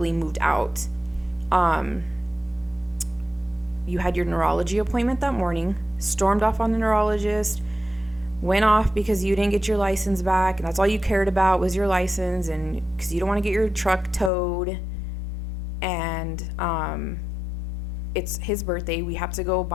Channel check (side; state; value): right; drops out; at 14.3 s